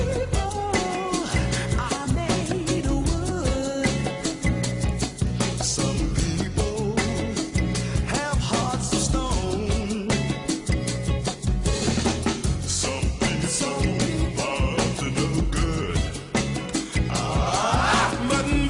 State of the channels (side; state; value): both; identical; correlation 1.00